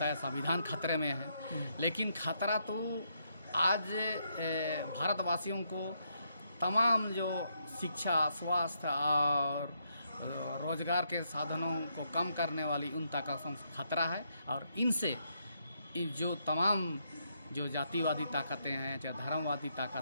या संविधान खतरे में है। लेकिन खतरा तो आज भारतवासियों को तमाम जो शिक्षा, स्वास्थ्य और रोजगार के साधनों को कम करने उन उन ताकतों से खतरा है। और इनसे जो तमाम जो जातिवादी ताकतें हैं, चाहे धर्मवादी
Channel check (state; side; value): inverted; both; correlation -0.77